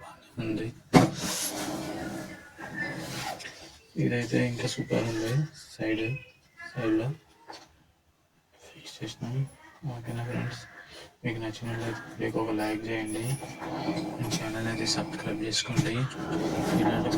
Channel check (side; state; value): both; identical; correlation 1.00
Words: బాగానే ఉంది. ఇదైతే ఇంకా సూపర్ ఉంది. సైడ్లో ఫిక్స్ చేసినాం. ఓకేనా ఫ్రెండ్స్. మీకు నచ్చినట్లయితే ఒక లైక్ చేయండి, మీ ఛానల్ అయితే సబ్స్క్రైబ్ చేసుకోండి. ఇలాంటి